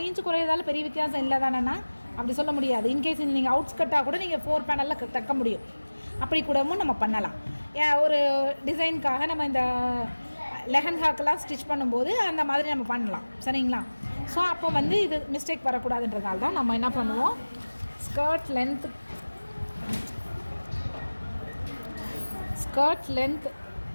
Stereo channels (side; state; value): both; inverted; correlation -1.00